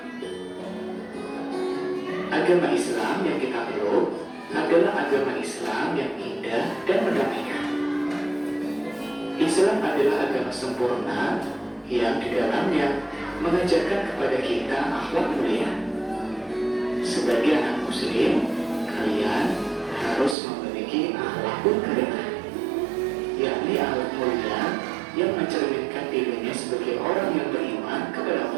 Agama Islam yang kita peluk adalah agama Islam yang indah dan mendamaikan. Islam adalah agama sempurna yang di dalamnya mengajarkan kepada kita akhlak mulia. Sebagai anak muslim, kalian harus memiliki akhlakul karimah, yakni akhlak mulia yang mencerminkan dirinya sebagai orang yang beriman kepada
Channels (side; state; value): left; drops out; at 20.4 s